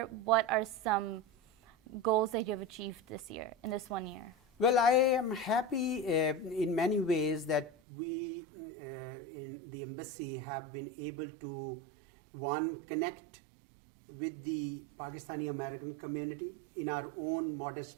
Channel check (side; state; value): left; drops out; at 7.7 s